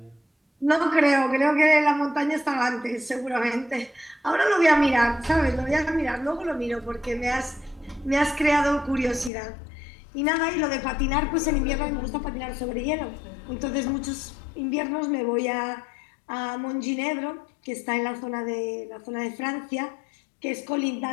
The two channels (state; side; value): drops out; right; at 9.3 s